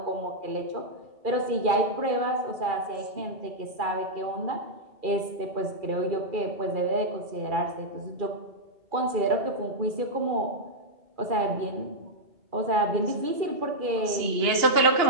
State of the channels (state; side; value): late; left; 2.4 ms